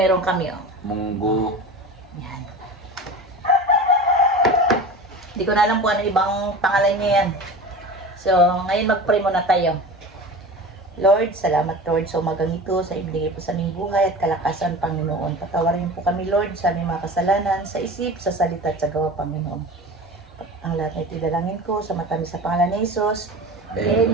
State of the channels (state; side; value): normal; both; correlation 0.33